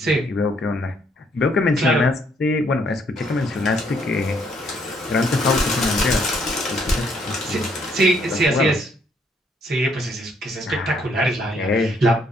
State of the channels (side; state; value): both; normal; correlation 0.69